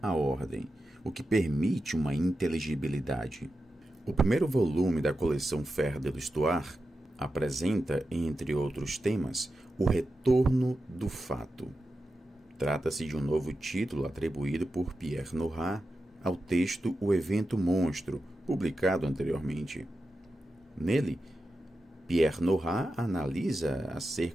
à ordem, o que permite uma inteligibilidade. O primeiro volume da coleção Fer de l'Histoire apresenta, entre outros temas, o retorno do fato. Trata-se de um novo título atribuído por Pierre Nora ao texto O Evento Monstro, publicado anteriormente. Nele, Pierre Nora analisa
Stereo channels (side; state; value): both; normal; correlation 0.90